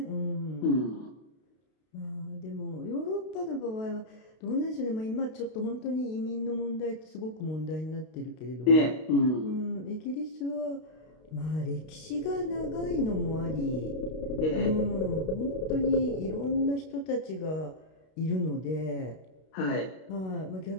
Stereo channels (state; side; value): late; right; 32 ms